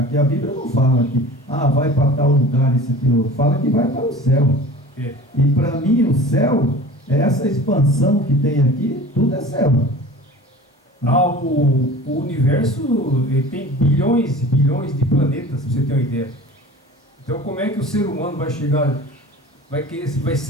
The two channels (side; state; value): both; normal; correlation 0.40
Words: a Bíblia não fala que vai para tal lugar, isso aqui, fala que vai para o céu. E para mim o céu é essa expansão que tem aqui, tudo é céu. O universo tem bilhões e bilhões de planetas, para você ter uma ideia. Então, como é que o ser humano vai chegar, vai